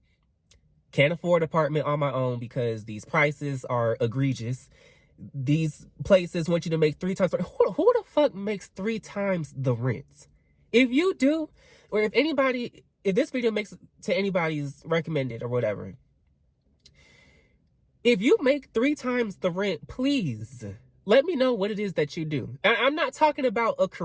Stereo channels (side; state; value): both; identical; correlation 1.00